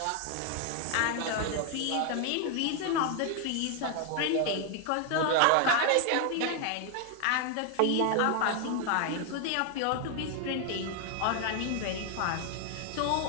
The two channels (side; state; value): both; different; correlation 0.00